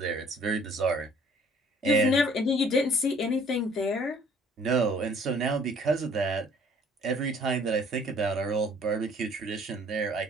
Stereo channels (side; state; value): both; normal; correlation 0.57